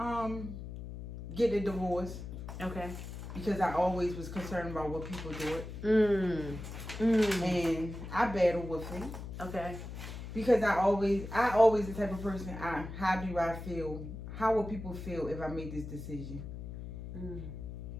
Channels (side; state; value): left; noise; hum, 9 dB below the sound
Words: Get a divorce. Okay. Because I always was concerned about what people do. And I battle with it. Okay. Because I always the type of person, how do I feel? How will people feel if I make this decision?